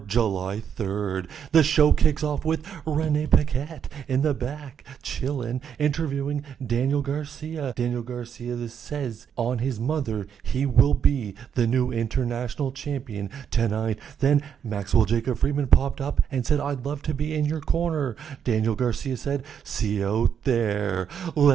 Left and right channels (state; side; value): quieter; left; 8.0 dB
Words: July 3rd. The show kicks off with Renee Paquette in the back, chillin', interviewing Daniel Garcia. Daniel Garcia says on his mother he will be the new international champion tonight. Then Maxwell Jacob Friedman popped up and said, "I'd love to be in your corner." Daniel Garcia said, "See you out there.